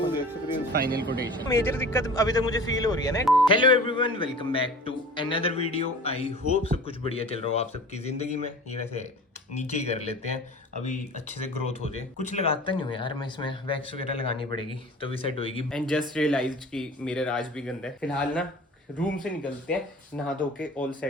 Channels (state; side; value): normal; both; correlation 0.41